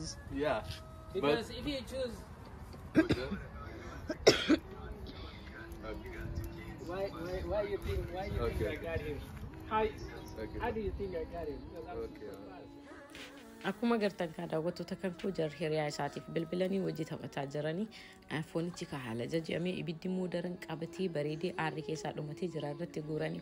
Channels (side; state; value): both; identical; correlation 1.00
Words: Yeah. Because if you choose, But why you think I Okay. got him? How okay. do you think I got him? Because I'm Okay. super fast. Akkuma gartan kan daawwattoota kan koo jar hiriyaa isaatiif bilbilanii wajji taphataa jiranii foonichi ka haala jajjamee ibiddi immoo daran qabatee bareedee aarri keessaa dhumatee jira irratti guuranii